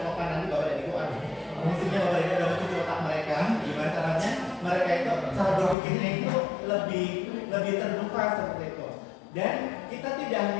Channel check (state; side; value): drops out; right; at 5.8 s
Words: nanti Bapak dan Ibu, maksudnya Bapak dan Ibu udah mencuci otak mereka, gimana caranya mereka itu cara berpikirnya itu lebih terbuka seperti itu. Dan kita tidak